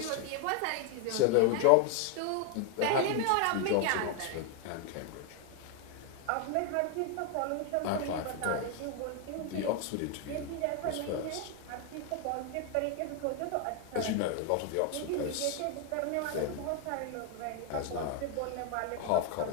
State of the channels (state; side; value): different; both; correlation 0.01